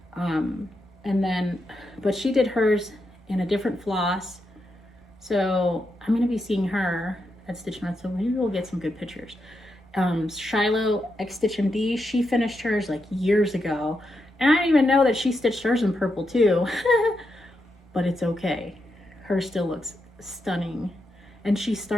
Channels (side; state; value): both; normal; correlation 0.84